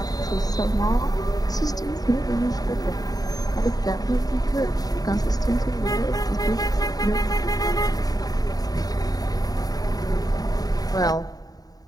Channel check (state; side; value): late; right; 0.18 ms